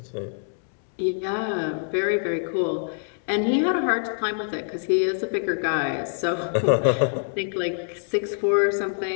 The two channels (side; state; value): right; silent; digital silence